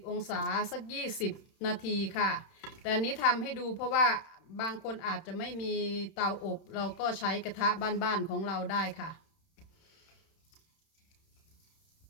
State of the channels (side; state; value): right; late; 31 ms